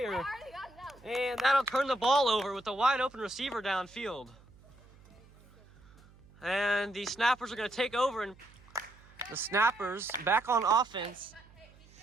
And that'll turn the ball over with a wide open receiver downfield. And the Snappers are gonna take over, and the Snappers back on offense.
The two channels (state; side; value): noise; right; hum, 25 dB below the sound